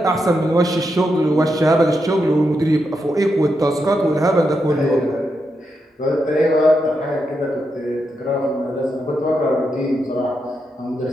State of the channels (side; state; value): both; normal; correlation 0.84